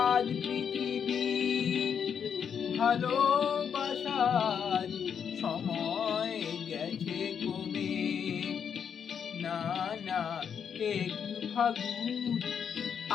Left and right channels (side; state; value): right; quieter; 7.5 dB